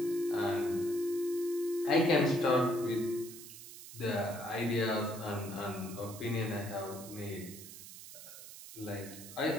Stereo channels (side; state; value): right; noise; hiss, 14 dB below the sound